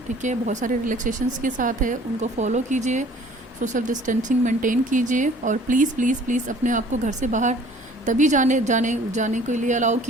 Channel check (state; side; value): normal; both; correlation 0.52